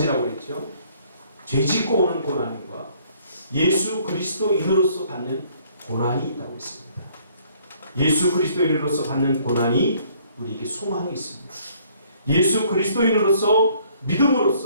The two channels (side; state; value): both; inverted; correlation -0.61